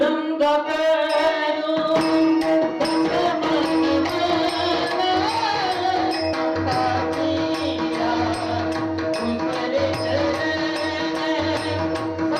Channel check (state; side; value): identical; both; correlation 1.00